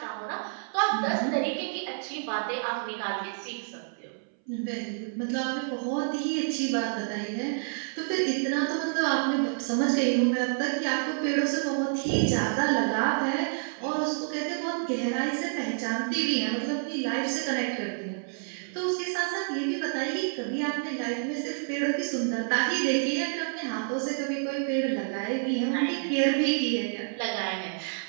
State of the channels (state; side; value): silent; left; 59 dB below the other